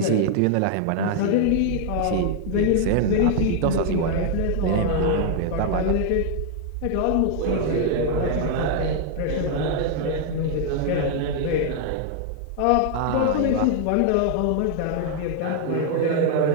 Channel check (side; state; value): both; different; correlation 0.00